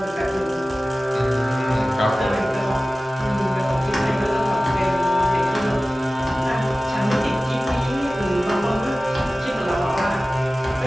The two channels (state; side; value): normal; both; correlation 0.96